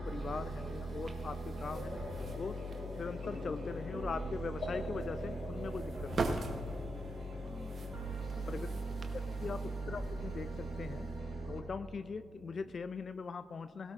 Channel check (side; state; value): both; normal; correlation 0.84